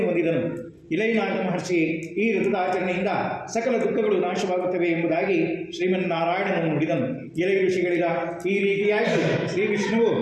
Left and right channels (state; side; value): identical; both; correlation 1.00